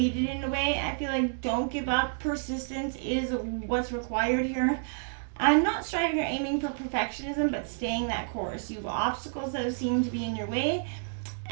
in a way. I feel like don't give up. Persistence is what's required here. I'm not striving or aiming for perfectionism, but staying that course. You have obstacles that seem to be in your way,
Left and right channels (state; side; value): silent; left; digital silence